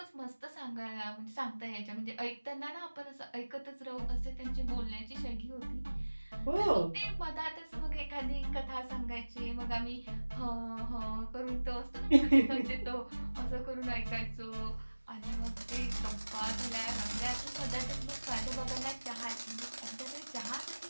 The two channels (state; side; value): inverted; both; correlation -1.00